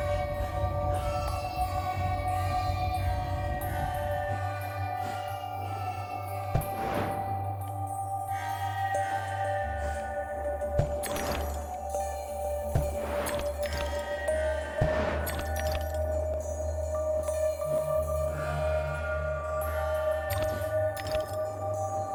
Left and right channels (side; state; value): both; identical; correlation 1.00